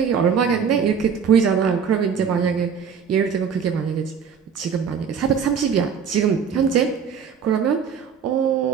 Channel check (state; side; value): quieter; left; 6.8 dB